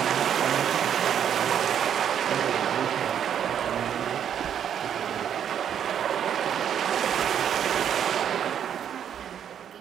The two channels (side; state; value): left; quieter; 9.0 dB